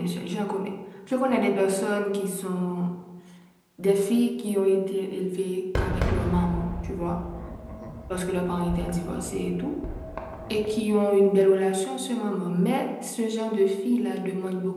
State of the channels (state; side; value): identical; both; correlation 1.00